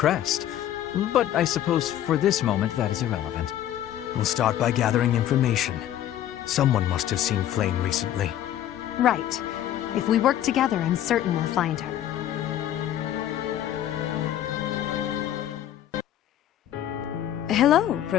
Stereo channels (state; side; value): quieter; right; 11.6 dB